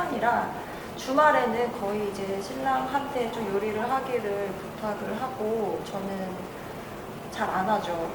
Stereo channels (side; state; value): both; identical; correlation 1.00